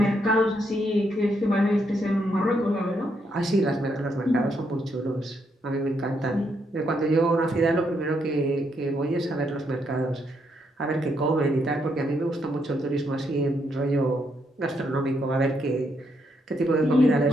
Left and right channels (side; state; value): both; normal; correlation 0.76